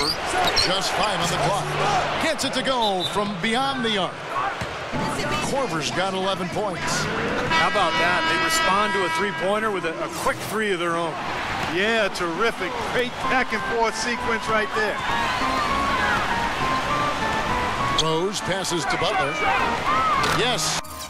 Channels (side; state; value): both; identical; correlation 1.00